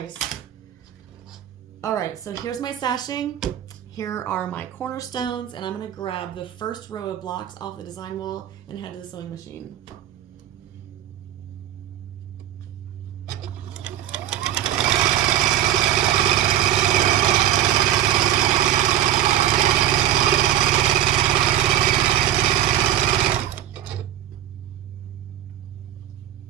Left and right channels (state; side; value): quieter; left; 11.8 dB